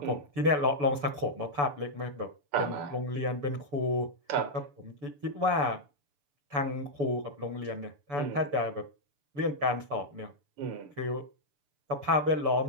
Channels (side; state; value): left; late; 6.9 ms